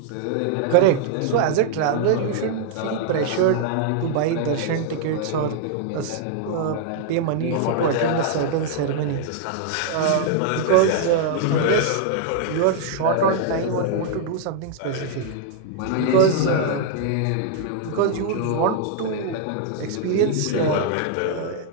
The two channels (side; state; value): both; different; correlation -0.01